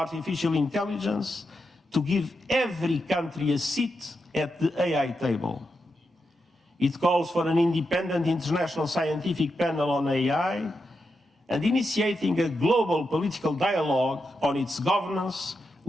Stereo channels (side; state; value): both; normal; correlation 0.86